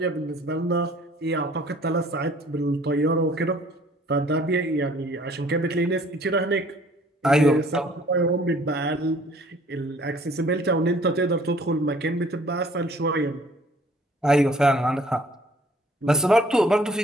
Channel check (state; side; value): normal; both; correlation 0.56